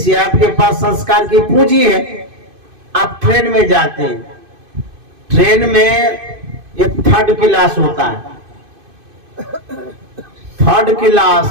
आपके पास संस्कार की पूंजी है। आप ट्रेन में जाते हैं, ट्रेन में एक थर्ड क्लास होता है, third class,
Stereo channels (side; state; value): left; late; 2.5 ms